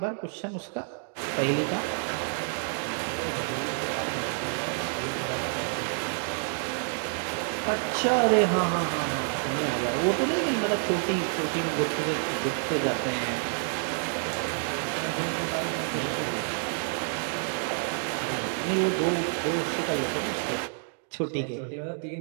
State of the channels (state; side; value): silent; left; 59 dB below the other